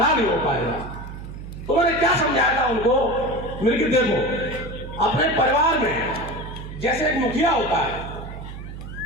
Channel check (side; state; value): right; noise; hum, 11 dB below the sound